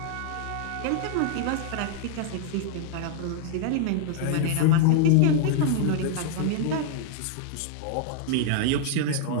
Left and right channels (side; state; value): both; different; correlation 0.00